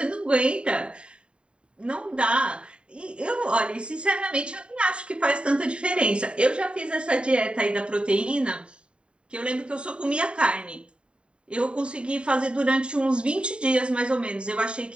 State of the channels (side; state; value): left; late; 0.054 ms